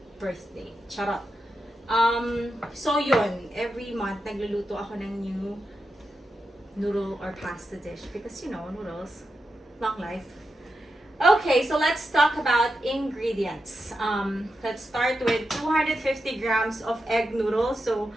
birthday. Charot. So yun, every month nagluluto ako ng new noodle or pasta dish because you know, noodles, long life. Okay, so let's talk about ingredients. Let's start with 250 grams of egg noodles. So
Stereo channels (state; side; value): normal; both; correlation 0.88